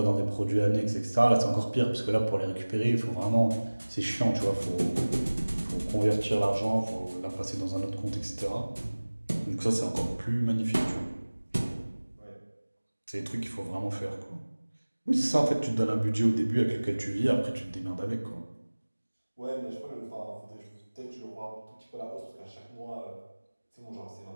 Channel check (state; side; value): inverted; both; correlation -1.00